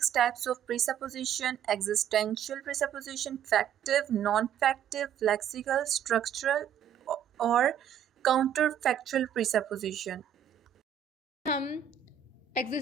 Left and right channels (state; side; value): quieter; left; 9.2 dB